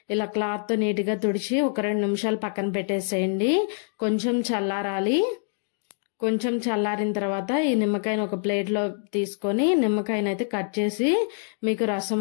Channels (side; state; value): right; silent; digital silence